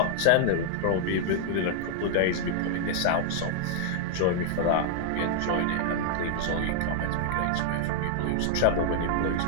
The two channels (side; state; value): both; different; correlation -0.01